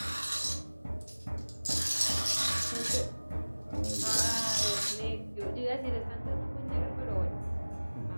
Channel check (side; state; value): both; inverted; correlation -1.00